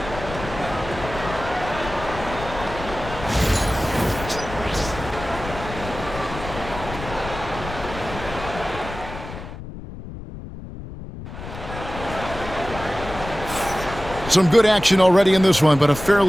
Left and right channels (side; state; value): left; noise; rumble, 11 dB below the sound